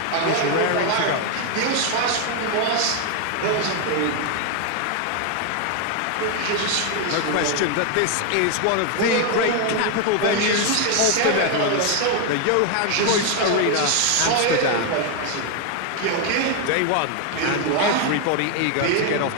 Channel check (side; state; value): both; different; correlation 0.01